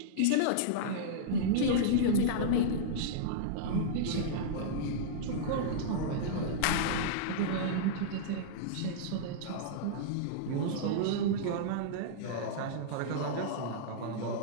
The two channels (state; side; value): different; both; correlation -0.03